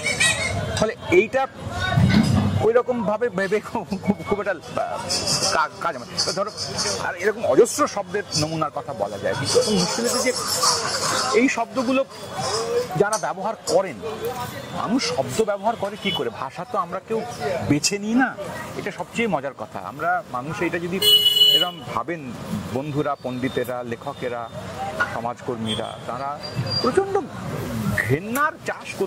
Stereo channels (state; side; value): identical; both; correlation 1.00